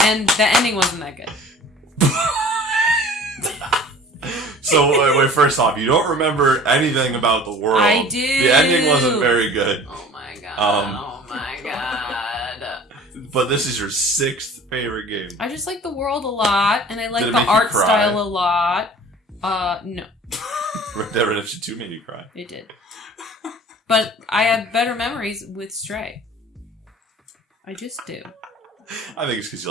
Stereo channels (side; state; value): both; normal; correlation 0.45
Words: And the ending wasn't that good. So, wait, first off, you don't remember anything about the world. I do. The ending wasn't very good. Oh my god. Oh my god. But this is your 6th favorite game. I just like the world a lot, and I like the art style a lot. No. Red Dead Redemption 2 made you cry. It did. But I have better memories with Stray. I just do. I think it's because you